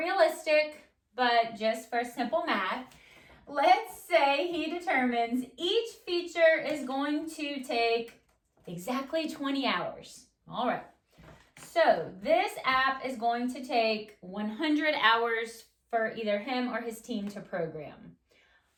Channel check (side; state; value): both; identical; correlation 1.00